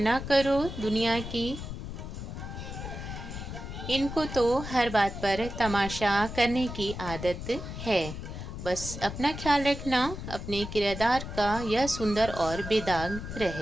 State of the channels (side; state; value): left; noise; rumble, 8 dB below the sound